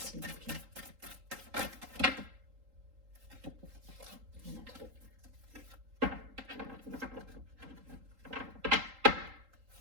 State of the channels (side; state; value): left; late; 3.8 ms